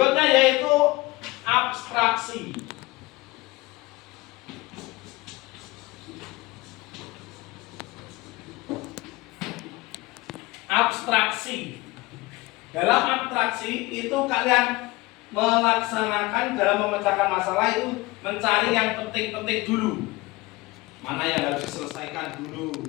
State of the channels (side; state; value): right; quieter; 21.6 dB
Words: yaitu abstraksi. Abstraksi. Dalam abstraksi itu kalian melaksanakan dalam memecahkan masalah itu mencari yang penting-penting dulu. Mana yang harus diselesaikan dulu.